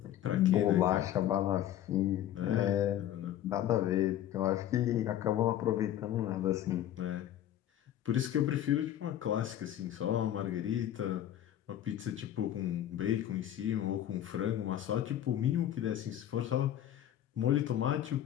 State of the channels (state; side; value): quieter; right; 11.7 dB